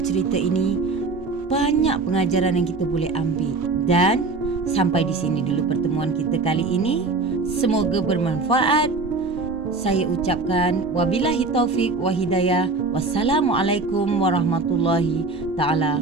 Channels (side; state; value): left; quieter; 3.7 dB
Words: ini banyak pengajaran yang kita boleh ambil. Dan sampai di sini dulu pertemuan kita kali ini. Semoga bermanfaat. Saya ucapkan wabillahi taufik wa hidayah. Wassalamualaikum warahmatullahi